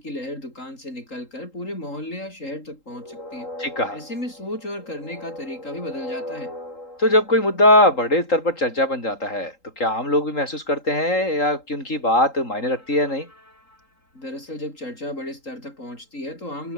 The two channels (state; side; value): late; right; 3.8 ms